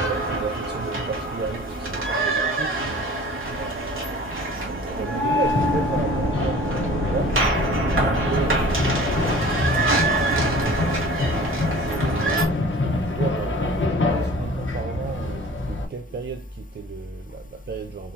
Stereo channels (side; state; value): both; normal; correlation 0.45